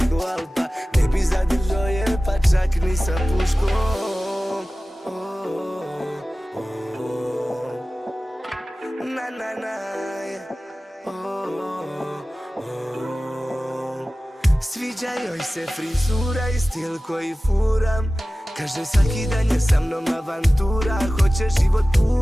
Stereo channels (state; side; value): normal; both; correlation 0.96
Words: Alpa, ne bi zadržao je pa čak ni sa puškom. Na na na, sviđa joj se frizura i stil koji furam. Kaže svaki dan je sa mnom avantura. Hoće život